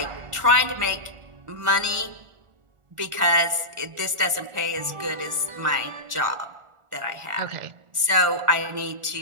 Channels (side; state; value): left; late; 1.4 ms